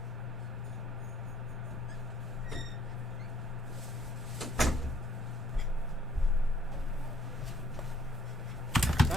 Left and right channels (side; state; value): both; normal; correlation 0.62